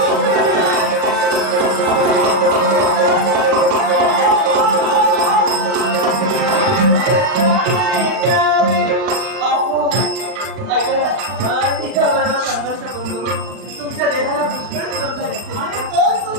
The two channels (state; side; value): late; left; 39 ms